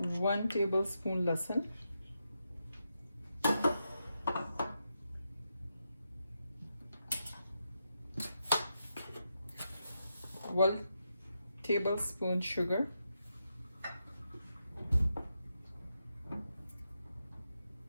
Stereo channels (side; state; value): both; inverted; correlation -0.85